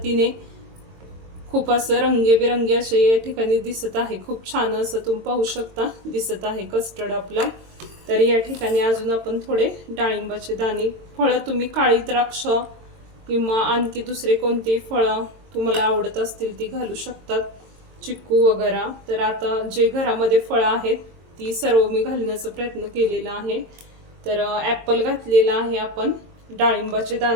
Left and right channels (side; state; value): left; late; 22 ms